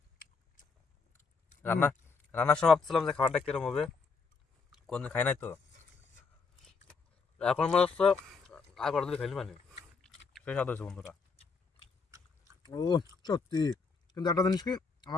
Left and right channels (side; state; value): right; quieter; 4.8 dB